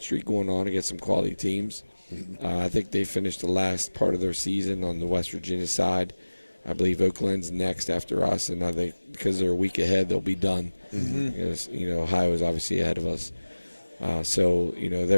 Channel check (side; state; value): both; inverted; correlation -1.00